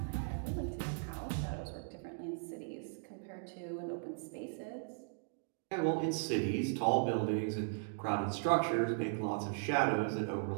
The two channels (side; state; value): left; silent; digital silence